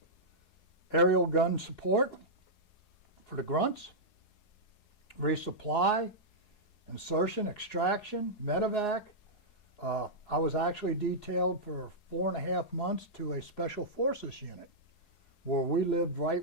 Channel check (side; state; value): right; late; 4.8 ms